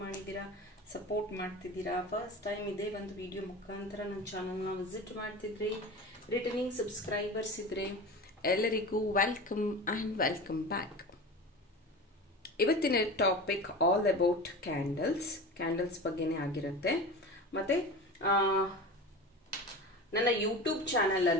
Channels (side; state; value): both; normal; correlation 0.31